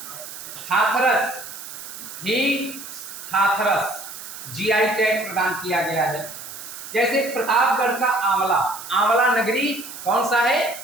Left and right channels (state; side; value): noise; right; hiss, 12 dB below the sound